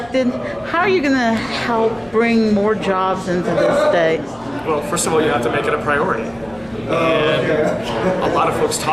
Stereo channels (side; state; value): left; noise; hum, 28 dB below the sound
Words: how are you going to help bring more jobs into this state? Well, first of all, you have to make it a priority. And a lot of folks